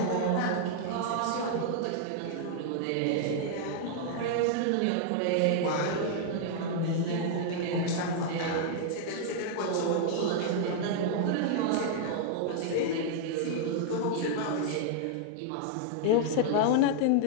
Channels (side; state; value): both; different; correlation 0.00